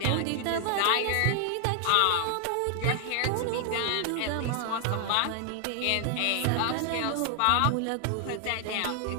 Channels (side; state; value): both; different; correlation 0.00